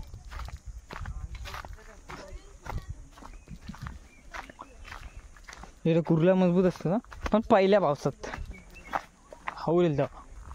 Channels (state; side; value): identical; both; correlation 1.00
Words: हे कुर्ला मजबूत असतं ना पण पहिल्या पावसात हवलेल तेव्हा.